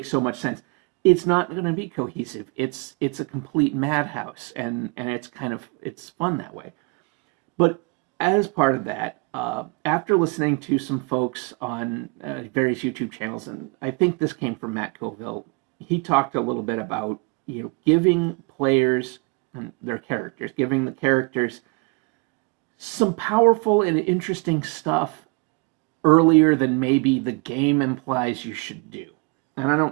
so much sense. It's not going to be cohesive. It's a complete madhouse, and it's fun that way. But as part of that, after listening to some folks on various YouTube channels, and I think this came from Matt Colville, he talked a little bit about giving players and giving the characters some powerful and interesting stuff earlier than maybe the game implies you should do. And I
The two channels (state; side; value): quieter; left; 30.7 dB